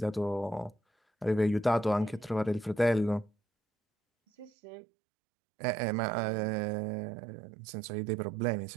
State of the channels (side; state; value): left; drops out; at 4.5 s